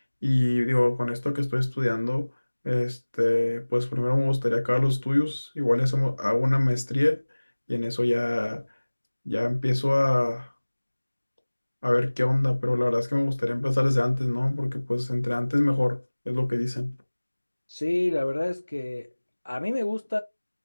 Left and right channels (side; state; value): both; inverted; correlation -1.00